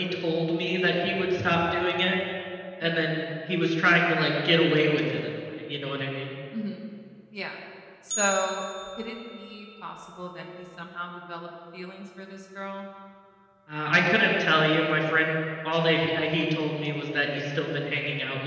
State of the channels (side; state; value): both; identical; correlation 1.00